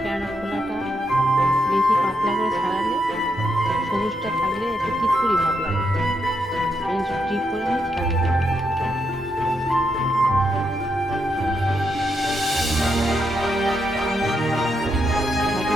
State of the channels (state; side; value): normal; both; correlation 0.81